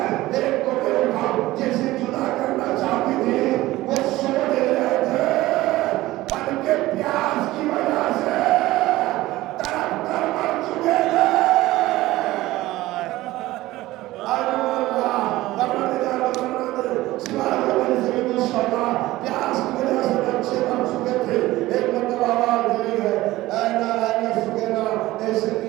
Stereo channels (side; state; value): left; quieter; 17.4 dB